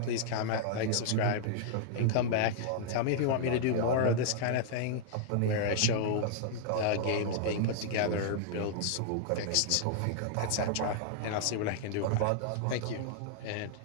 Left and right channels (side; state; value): both; different; correlation -0.01